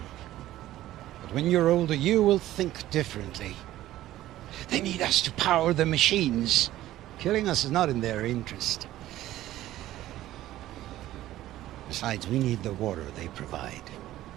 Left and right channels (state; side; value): quieter; left; 14.5 dB